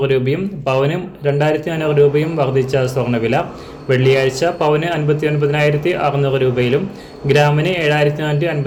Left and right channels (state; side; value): identical; both; correlation 1.00